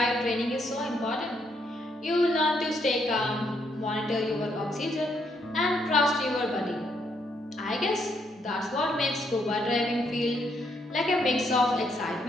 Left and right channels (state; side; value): normal; both; correlation 0.74